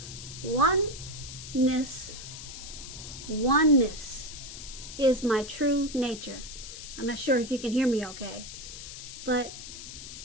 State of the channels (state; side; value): noise; left; hiss, 11 dB below the sound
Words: Oneness is my true nature. I'm not sure if you can hear me okay, but